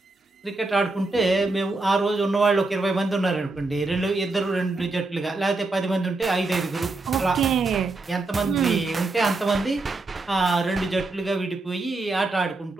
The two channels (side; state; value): left; quieter; 3.2 dB